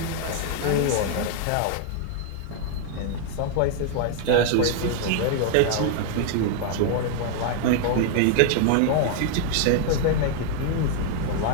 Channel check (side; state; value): both; different; correlation 0.00